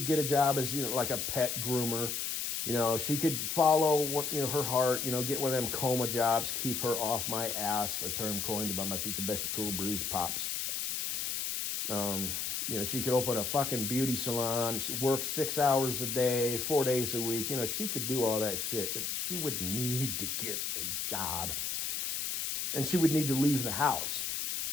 get a job as like a pet groomer. She could follow what her heart. Get one of them coma jobs, keep her off my ass. A term coined by my future bestie, Cool Breeze Pops. She could open a fucking beauty salon. She works 6 hours a day, 4 days a week. She could do all that shit, but she would need to get a job, and she would need to leave the house.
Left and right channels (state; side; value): noise; left; hiss, 2 dB below the sound